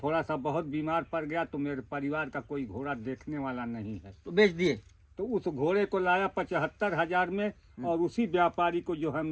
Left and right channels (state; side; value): identical; both; correlation 1.00